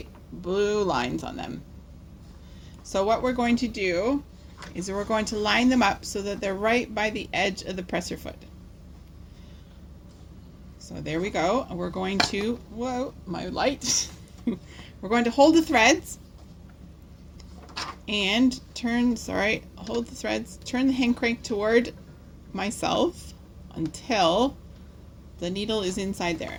blue lines on them. So what we're going to do is we're going to line them up so that they're right by the edge of the presser foot. So there we go. We're going to, whoa, my light. We're going to hold the threads and hold the threads, turn the hand crank toward myself until the needle is inside there.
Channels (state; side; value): identical; both; correlation 1.00